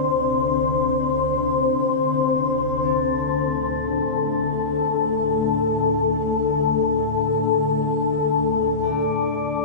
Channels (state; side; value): quieter; right; 3.6 dB